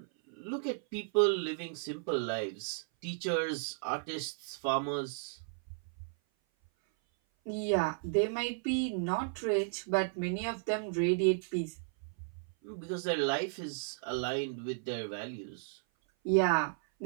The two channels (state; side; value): silent; left; 55 dB below the other